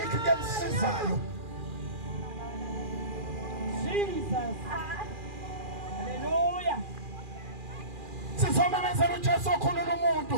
into emsizayo Jesus. Hallelujah. Sizomemezela uJesu okhulula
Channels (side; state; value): left; late; 2.4 ms